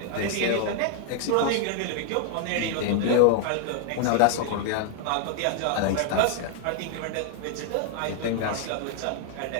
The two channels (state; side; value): different; both; correlation 0.00